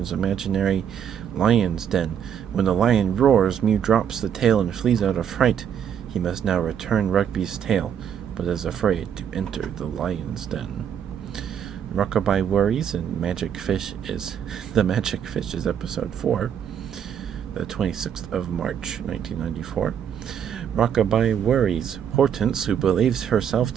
imaginary lion's den. When the lion roars, Mew drops the tail and flees out of fright. He must now return Rugby's tail, but is afraid to enter the lion's den. Rockabye Worries and Magic Fish is episode 4, the 26th of March, 1994. Rockabye Worries. Hortense, who believes herself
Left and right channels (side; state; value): left; quieter; 8.6 dB